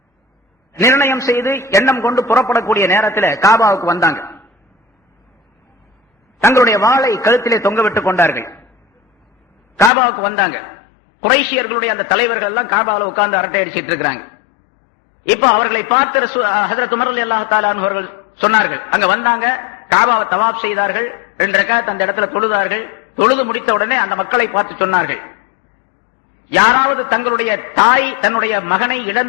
நிர்ணயம் செய்து எண்ணம் கொண்டு புறப்படக்கூடிய நேரத்தில் காபாவுக்கு வந்தாங்க. தங்களுடைய வாளை கழுத்திலே தொங்க விட்டுக் கொண்டார்கள். காபாவுக்கு வந்தாங்க. குறைஷியர்களுடைய அந்த தலைவர்கள் எல்லாம் காபாவில் உட்கார்ந்து அரட்டை அடிச்சிட்டு இருக்கிறாங்க. இப்ப அவர்களை பார்த்து ஹஜ்ரத் உமர் ரலியல்லாஹு தஆலா அன்ஹு அவர்கள் சொன்னார்கள். அங்க வந்தாங்க, காபாவை தவாப் செய்தார்கள், 2 ரக்காத் அந்த இடத்துல தொழுதார்கள். தொழுது முடித்த உடனே அந்த மக்களை பார்த்து சொன்னார்கள், யாராவது தங்களுடைய தாய் தன்னுடைய மகனை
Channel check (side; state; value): right; drops out; at 9.9 s